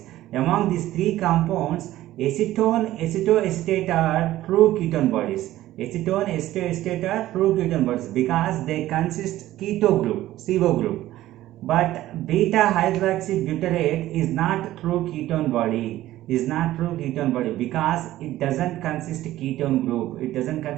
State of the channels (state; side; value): quieter; left; 14.9 dB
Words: Among these three compounds, acetone, acetoacetate are true ketone bodies. Acetone, acetoacetate are true ketone bodies because they consist keto group, CO group. But beta hydroxybutyrate is not true ketone body. Because it doesn't consist ketone group. It doesn't